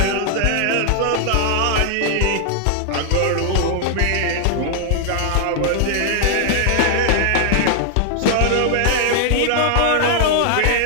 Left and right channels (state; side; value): different; both; correlation 0.00